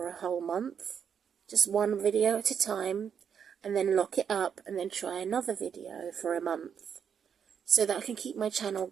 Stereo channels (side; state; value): left; quieter; 7.6 dB